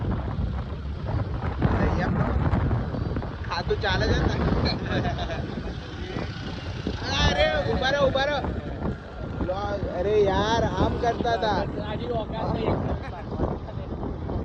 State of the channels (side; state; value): both; identical; correlation 1.00